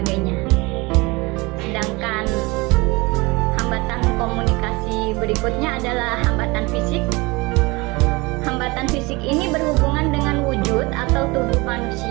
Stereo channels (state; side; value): quieter; left; 24.4 dB